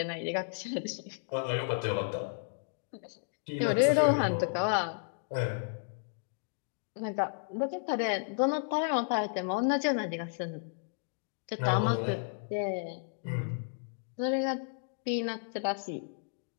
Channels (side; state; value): right; silent; digital silence